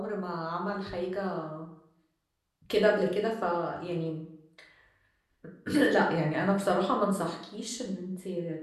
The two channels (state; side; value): identical; both; correlation 1.00